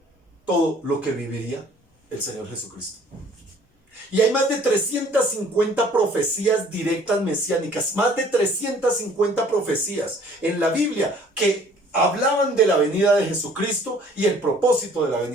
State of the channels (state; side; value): normal; both; correlation 0.55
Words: todo lo que viviría el Señor Jesucristo. Y hay más de 350 profecías directas mesiánicas, más de 350 profecías en la Biblia que hablaban de la venida de Jesucristo y el propósito de la